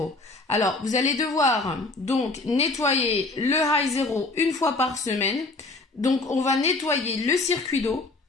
Alors vous allez devoir donc nettoyer le high zero une fois par semaine. Donc on va nettoyer le circuit d'eau,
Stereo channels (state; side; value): quieter; right; 3.3 dB